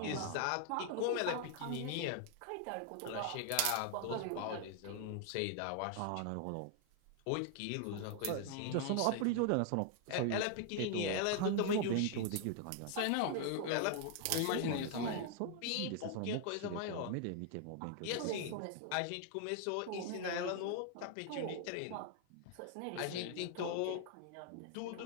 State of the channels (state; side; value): different; both; correlation 0.00